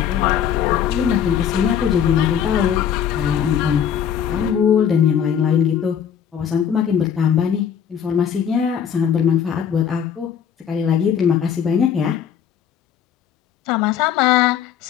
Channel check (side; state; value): right; quieter; 8.5 dB